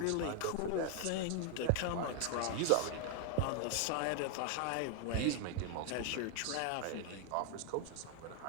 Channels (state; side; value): different; both; correlation 0.00